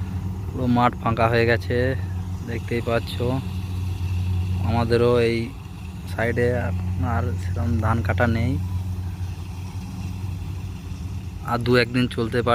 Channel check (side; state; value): both; identical; correlation 1.00